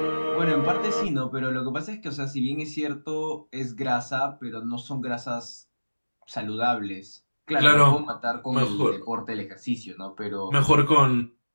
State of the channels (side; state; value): both; inverted; correlation -1.00